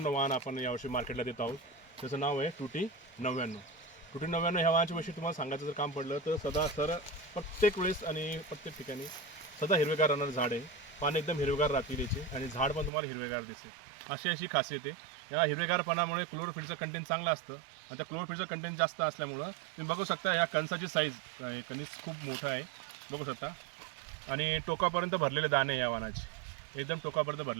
वाहन आपण यावर्षी मार्केटला देत आहोत. त्याचं नाव आहे टूटी 99. टूटी 99 ह्या वाहनाच्या विषयी तुम्हाला सांगायचं जर काम पडलं तर सदा प्रत्येक वेळेस आणि प्रत्येक ठिकाणी सदा हिरवेगार राहणारं झाड आहे. पान एकदम हिरवेगार राहतील याचे आणि झाड पण तुम्हाला हिरवेगार दिसेल अशी खासियत आहे. या हिरवेगारपणामुळे क्लोरोफिलचं कंटेंट चांगलं असतं आणि त्या क्लोरोफिलचं कंटेंट जास्त असल्यामुळं तुम्ही बघू शकता या कणसाची साईज कणीस खूप मोठं आहे बघू शकता आणि टोकापर्यंत भरलेले दाणे आहे या वाहनाची, एकदम टोकापर्यंत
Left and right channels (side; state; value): left; drops out; at 12.9 s